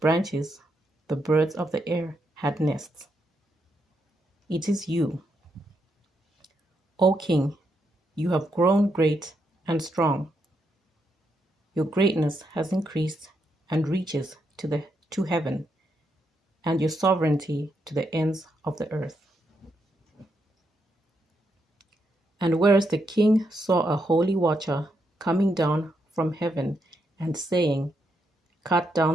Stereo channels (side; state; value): both; normal; correlation 0.80